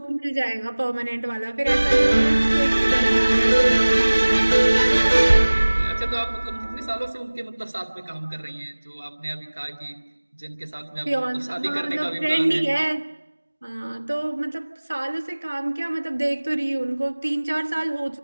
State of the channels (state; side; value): inverted; both; correlation -1.00